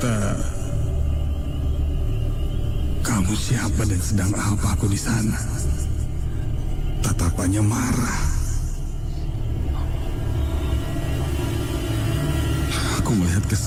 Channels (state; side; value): identical; both; correlation 1.00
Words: "Kamu siapa dan sedang apa aku di sana?" Tatapannya marah. Aku melihat ke